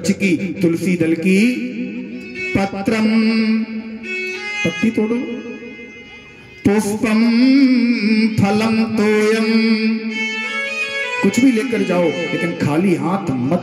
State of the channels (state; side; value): identical; both; correlation 1.00